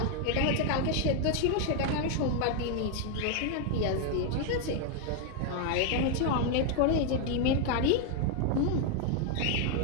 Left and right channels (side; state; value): both; different; correlation 0.00